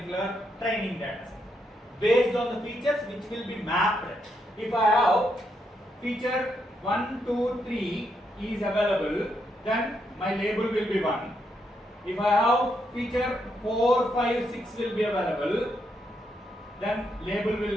training data set. Based on the features which will be mapped. If I have feature 1, 2, 3 is available, then my label will be 1. If I have feature 4, 5, 6 will be available, then label will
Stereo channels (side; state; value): both; normal; correlation 0.79